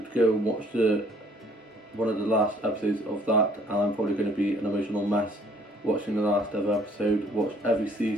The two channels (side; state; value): both; normal; correlation 0.60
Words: to go and watch one of the last episodes of that, and I'm probably going to be an emotional mess watching the last ever episode. Watch every